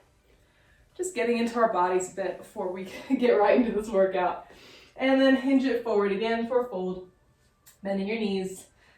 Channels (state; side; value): identical; both; correlation 1.00